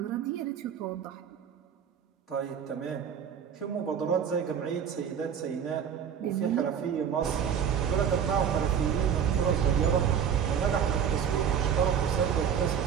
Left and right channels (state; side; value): quieter; left; 8.0 dB